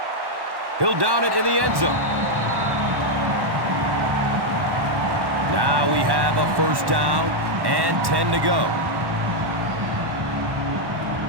He'll down it in the end zone. Now we have a first down and 10 to go.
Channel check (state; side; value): late; left; 1.1 ms